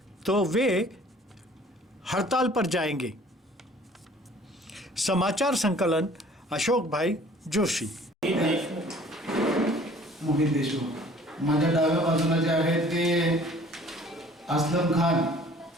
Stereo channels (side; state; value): both; normal; correlation 0.52